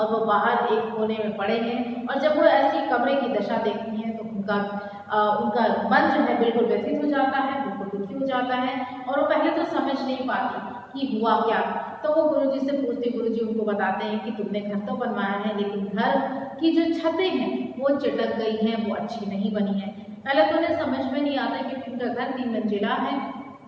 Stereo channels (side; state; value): both; identical; correlation 1.00